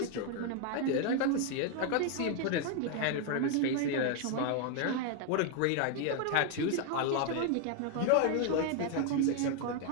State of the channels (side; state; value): both; different; correlation 0.01